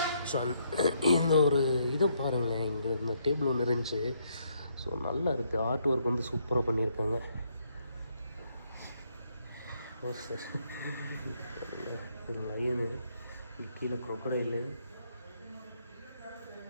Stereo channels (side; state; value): both; inverted; correlation -0.73